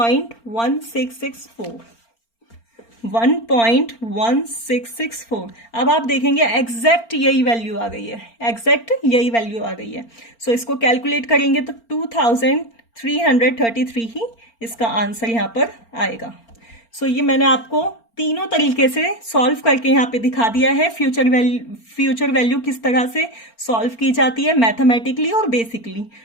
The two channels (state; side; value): late; right; 4.4 ms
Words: 1.1664। अब आप देखेंगे एग्जैक्ट यही वैल्यू आ गई है, एग्जैक्ट यही वैल्यू आ गई है। सो इसको कैलकुलेट करेंगे तो 2333 ही इसका आंसर यहाँ पर आएगा। सो ये मैंने आपको तीनों तरीके से सॉल्व करके यहाँ पे दिखा दिया है। फ्यूचर वैल्यू किस तरह से सॉल्व की जाती है, मैथमेटिकली और बेसिकली।